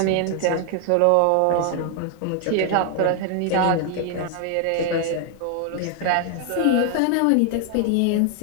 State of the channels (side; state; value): both; different; correlation 0.00